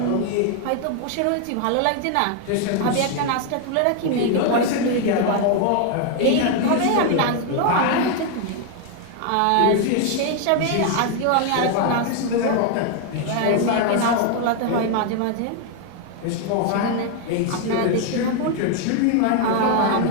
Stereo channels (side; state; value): both; different; correlation 0.01